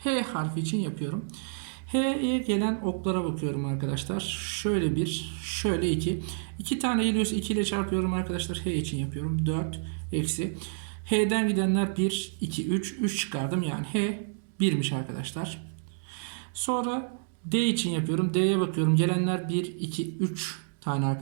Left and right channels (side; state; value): left; silent; digital silence